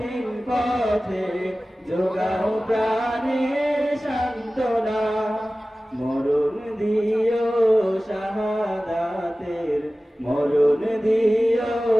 পথে যোগাও প্রাণে সান্ত্বনা মরণ দিও শাহাদাতের মরণ দিও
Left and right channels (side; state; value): both; normal; correlation 0.97